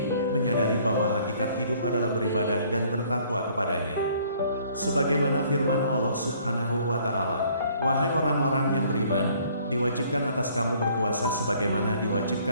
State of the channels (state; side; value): inverted; both; correlation -0.60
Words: menyadari bahwa hakikat hidup adalah beribadah dan bertakwa kepadanya. Sebagaimana firman Allah Subhanahu wa Ta'ala, "Wahai orang-orang yang beriman, diwajibkan atas kamu berpuasa sebagaimana